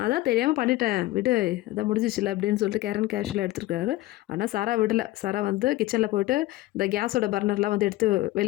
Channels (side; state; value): right; quieter; 17.6 dB